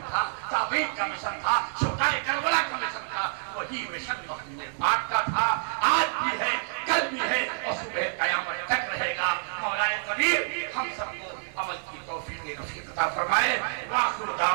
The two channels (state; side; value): silent; left; 59 dB below the other